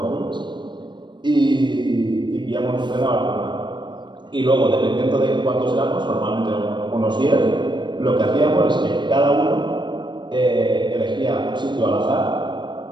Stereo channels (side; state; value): left; late; 0.22 ms